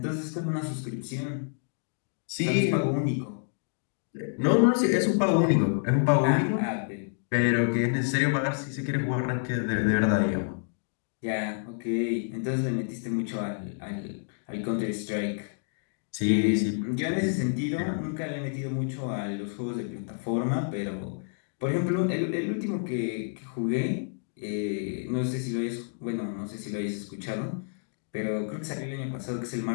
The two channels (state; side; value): silent; right; digital silence